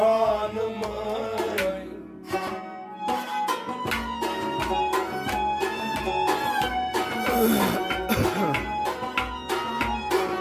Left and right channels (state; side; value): identical; both; correlation 1.00